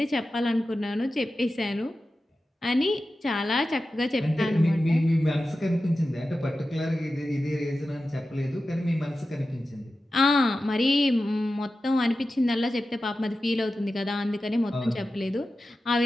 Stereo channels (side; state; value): both; normal; correlation 0.93